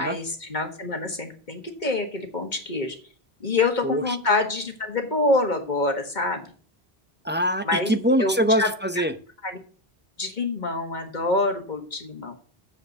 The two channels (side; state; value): both; normal; correlation 0.10